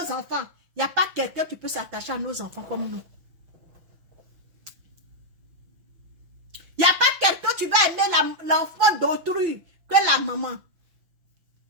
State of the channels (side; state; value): left; late; 6.0 ms